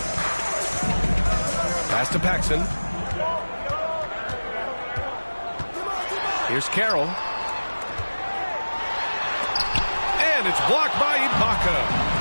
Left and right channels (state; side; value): inverted; both; correlation -1.00